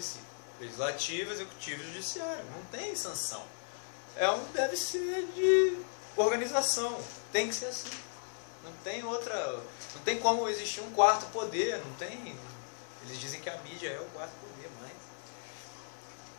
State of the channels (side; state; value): right; silent; 54 dB below the other